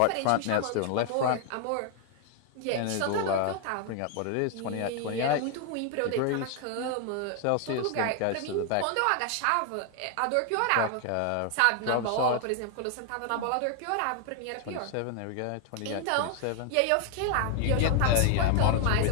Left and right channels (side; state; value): both; different; correlation 0.00